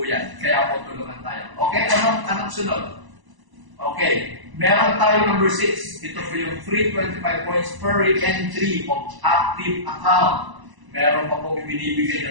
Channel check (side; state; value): left; late; 1.0 ms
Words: yan. Kaya po tulungan tayo. Okay, anong sunod? Okay, meron tayo number 6. Ito po yung free 25 points per entry of active account. Meron pa po